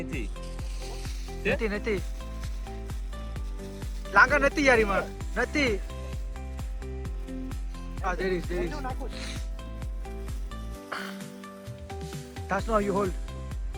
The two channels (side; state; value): both; identical; correlation 1.00